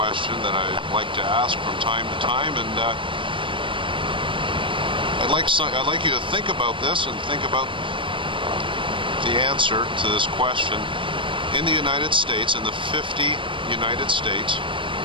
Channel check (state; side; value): late; left; 0.25 ms